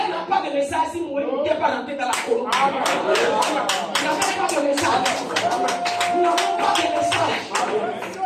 n'a pas de message si vous n'êtes pas rentré dans la colonne. Il n'a pas de message. Nous n'avons pas de message.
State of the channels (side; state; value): both; identical; correlation 1.00